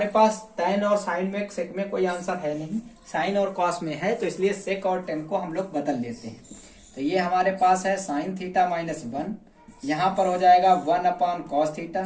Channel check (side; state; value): both; identical; correlation 1.00